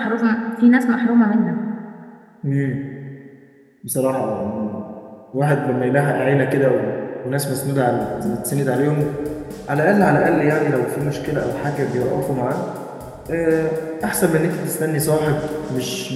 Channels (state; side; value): identical; both; correlation 1.00